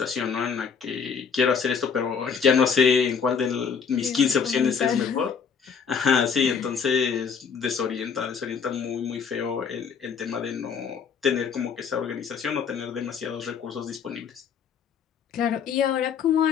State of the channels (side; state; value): right; quieter; 6.4 dB